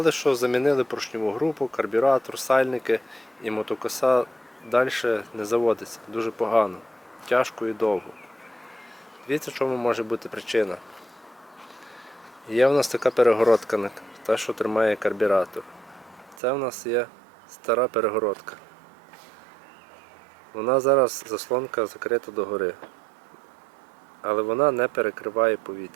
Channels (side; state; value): left; drops out; at 16.4 s